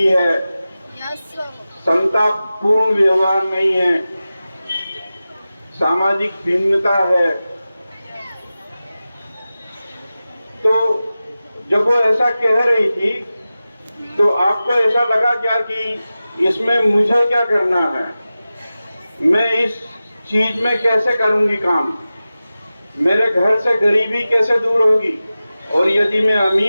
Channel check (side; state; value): both; inverted; correlation -0.95